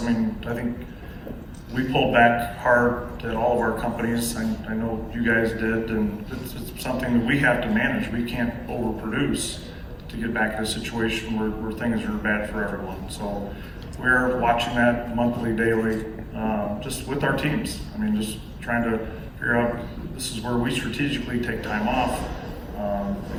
mean, I think we pulled back hard at all of our companies. I know you guys did, and it's something that we have to manage. We can't overproduce to get back to a situation where things are bad for everyone. So we're watching that monthly, daily, just with our teams. I mean, just trying to figure out, this is where we strategically take time off,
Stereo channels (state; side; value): identical; both; correlation 1.00